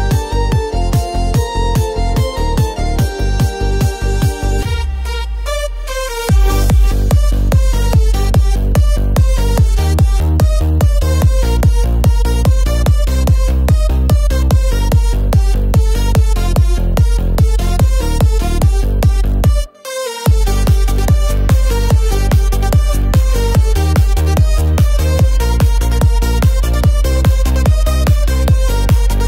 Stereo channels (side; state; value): both; identical; correlation 1.00